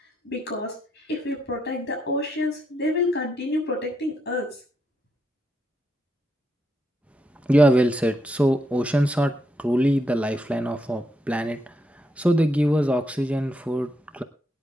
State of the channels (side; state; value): both; normal; correlation 0.79